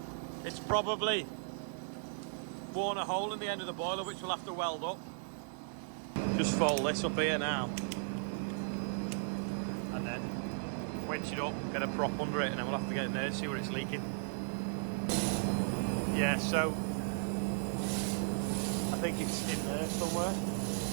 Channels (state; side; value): silent; left; digital silence